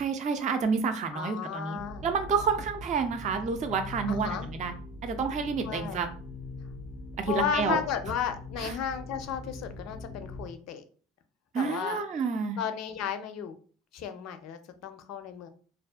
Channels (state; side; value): normal; both; correlation 0.31